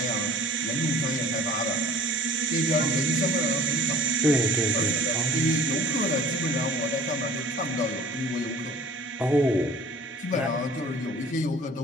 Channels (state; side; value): normal; both; correlation 0.49